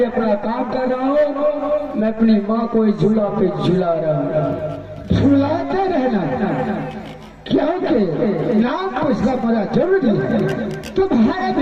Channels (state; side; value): identical; both; correlation 1.00